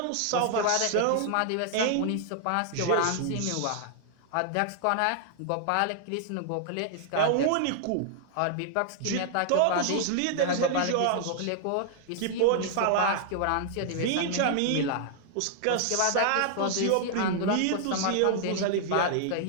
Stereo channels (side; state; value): both; different; correlation 0.00